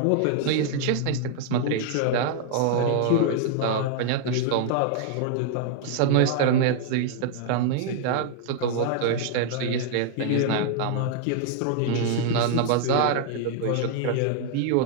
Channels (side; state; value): both; different; correlation 0.00